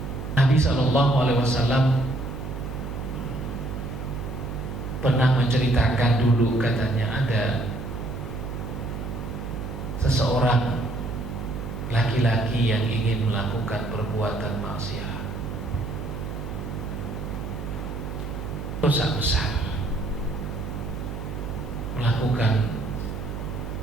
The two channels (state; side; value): noise; right; hum, 7 dB below the sound